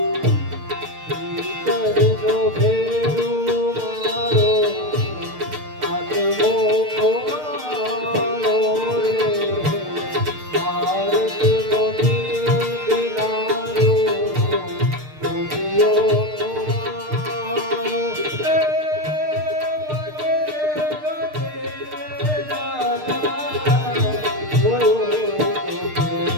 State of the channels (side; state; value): left; late; 6.6 ms